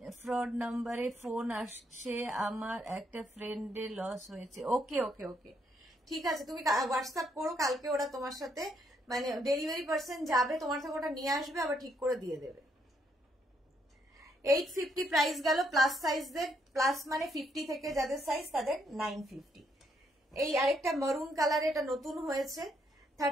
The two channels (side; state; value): both; normal; correlation 0.73